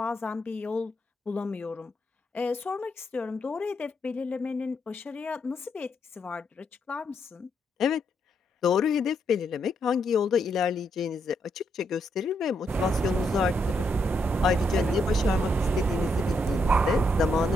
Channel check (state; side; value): normal; both; correlation 0.78